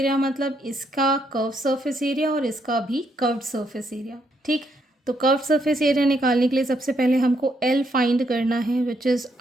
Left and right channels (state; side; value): normal; both; correlation 0.75